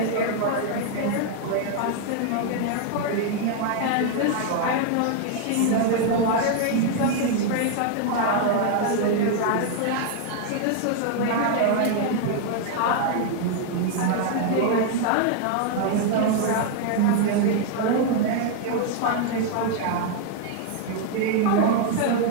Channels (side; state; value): both; different; correlation 0.00